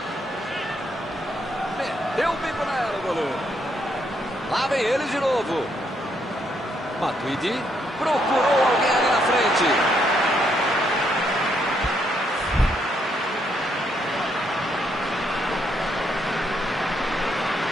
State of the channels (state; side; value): normal; both; correlation 0.75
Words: Meteu o bico nela, o goleiro. Lá vem eles de novo. Matuidi procurou alguém ali na frente.